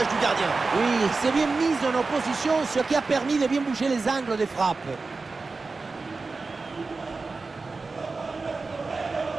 du gardien. Oui, c'est bien mis en opposition, ce qui a permis de bien bouger les angles des frappes.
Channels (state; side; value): quieter; left; 4.0 dB